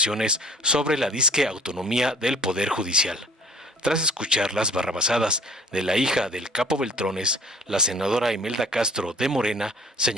sobre la disque autonomía del Poder Judicial. Tras escuchar las barrabasadas de la hija del capo Beltrones, la senadora Imelda Castro de Morena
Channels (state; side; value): normal; both; correlation 0.51